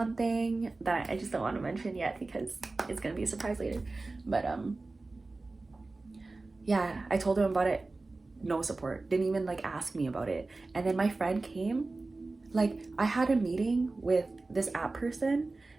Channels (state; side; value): quieter; left; 3.4 dB